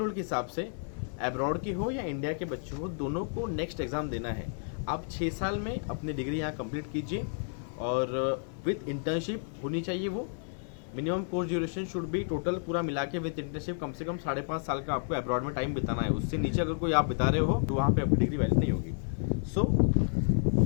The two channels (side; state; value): right; silent; 55 dB below the other